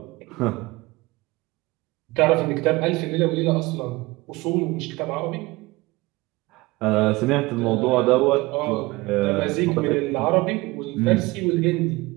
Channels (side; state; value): left; quieter; 21.8 dB